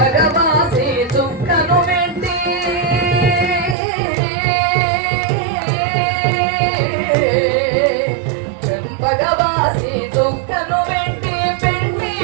చుక్కను వెంటి, చెంపగవాసి చుక్కను వెంటి పెండి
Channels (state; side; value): drops out; left; at 3.8 s